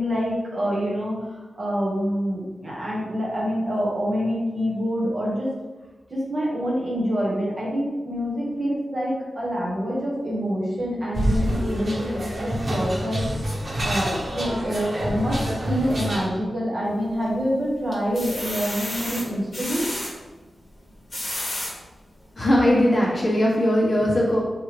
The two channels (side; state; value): both; normal; correlation 0.92